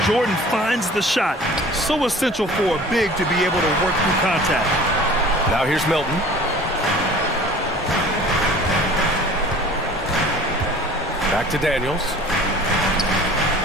Jordan finds the shot. So essential for a big to be able to work through contact. Now here's Milton. Back to Daniels.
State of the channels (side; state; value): both; normal; correlation 0.45